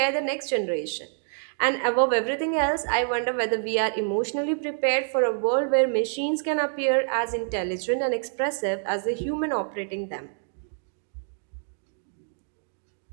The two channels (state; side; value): silent; left; digital silence